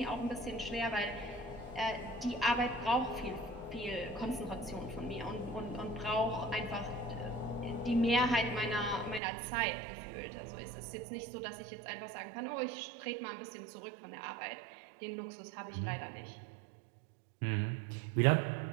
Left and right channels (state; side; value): drops out; left; at 9.2 s